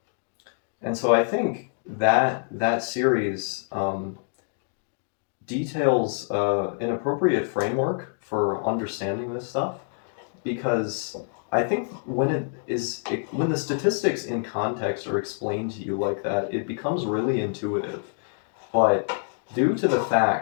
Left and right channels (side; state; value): right; silent; digital silence